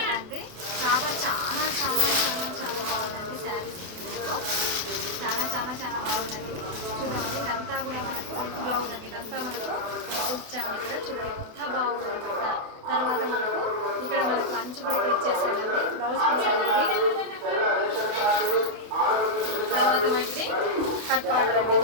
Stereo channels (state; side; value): late; left; 28 ms